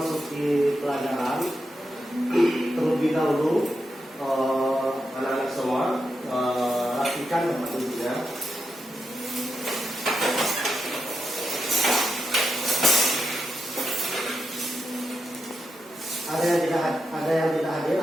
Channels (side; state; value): both; normal; correlation 0.85